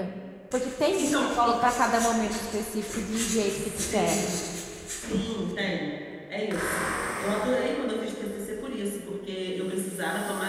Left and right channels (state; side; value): identical; both; correlation 1.00